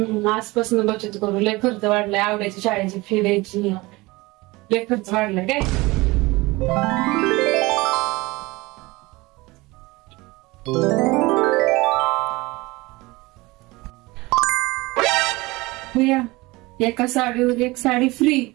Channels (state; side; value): quieter; left; 22.1 dB